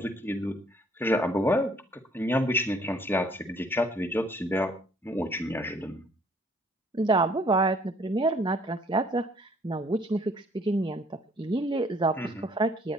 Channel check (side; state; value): both; normal; correlation 0.61